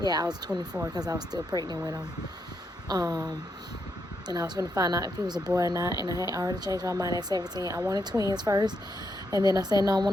Yeah, I was 24 because I was still pregnant with him. And I was going to find out if he was a boy or not, and I had already changed my mind at 17. I wanted twins first, and then I said, no, I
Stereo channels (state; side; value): normal; both; correlation 0.80